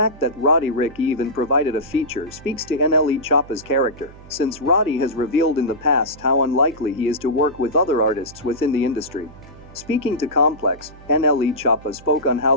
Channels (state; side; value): noise; right; hum, 20 dB below the sound